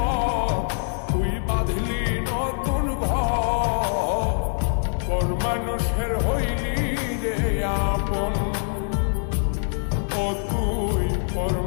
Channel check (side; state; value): right; silent; 60 dB below the other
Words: তুই বাঁধলি নতুন ঘর মানুষের হইলি রে আপন ও তুই পর